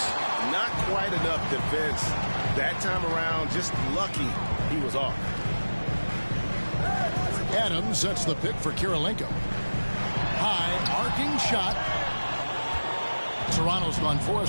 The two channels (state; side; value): inverted; both; correlation -1.00